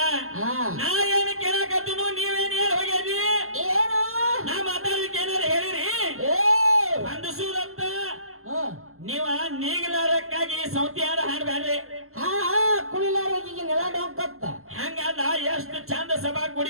ನಾ ಏನು ಕೇಳಕತ್ತೀನು ನೀವೇನು ಹೇಳಿ ಹೋಗ್ಯಾರಿ ಏನು ನಾ ಮಾತಾಡಲಿಕ್ಕೆ ಏನಾರು ಹೇಳಿರಿ ಅಂದಸೂದಂತ ನೀವ ನೀಗಲಾರಕ್ಕಾಗಿ ಸೌತಿ ಹಾಡು ಹಾಡ್ಬ್ಯಾಡ್ರಿ ಕುಳಿಲಾರೋಗಿಗೆ ನೆಲ ಡೊಂಕತ್ತ ಹಂಗಲ್ಲ ಎಷ್ಟು ಚಂದ ಸಭಾ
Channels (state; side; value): late; left; 0.62 ms